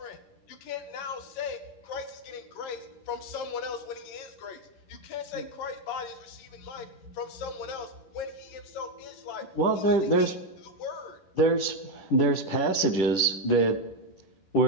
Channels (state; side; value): late; right; 11 ms